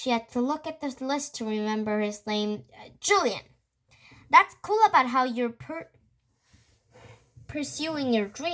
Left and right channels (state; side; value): identical; both; correlation 1.00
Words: had to look at the list to remember his name. Julian. That's cool about how you're pursuing your